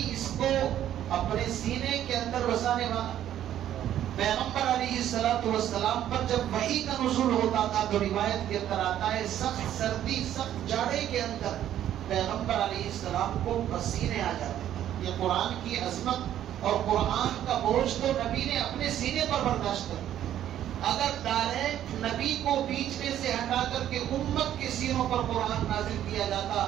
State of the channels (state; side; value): quieter; left; 11.4 dB